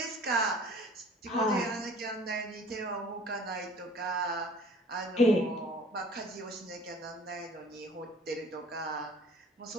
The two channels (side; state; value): both; normal; correlation 0.49